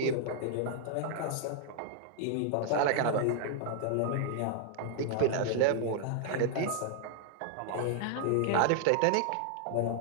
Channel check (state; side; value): different; both; correlation 0.00